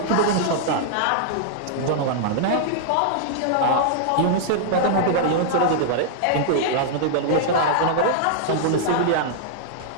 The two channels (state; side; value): different; both; correlation -0.01